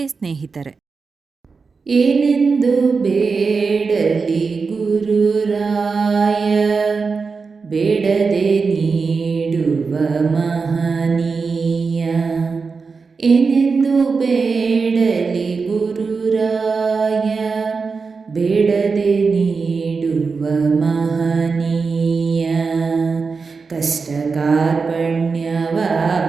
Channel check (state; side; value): quieter; left; 4.8 dB